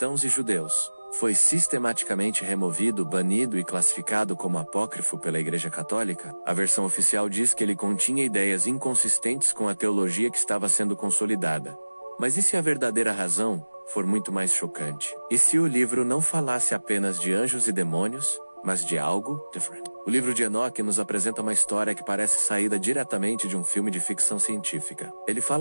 e judeus, foi sistematicamente removido, banido e classificado como apócrifo pela Igreja Católica? A versão oficial diz que ele continha ideias inconsistentes com a teologia que estava sendo consolidada. Mas e se a verdadeira razão for muito mais chocante? E se o livro não falasse apenas de anjos e demônios, mas de algo diferente? O livro de Enoque nos apresenta uma história que parece saída diretamente de um filme de ficção científica. Ele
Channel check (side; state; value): both; inverted; correlation -1.00